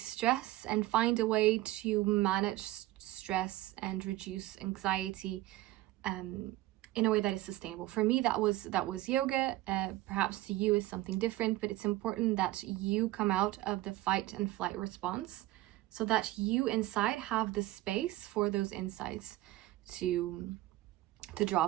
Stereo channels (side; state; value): left; quieter; 17.0 dB